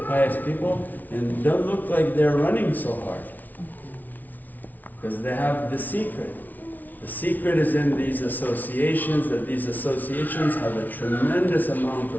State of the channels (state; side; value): late; right; 0.080 ms